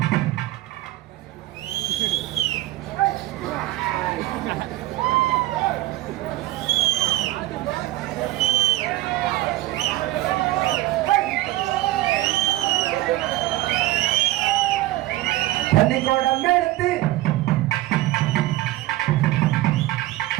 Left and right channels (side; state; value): left; quieter; 17.0 dB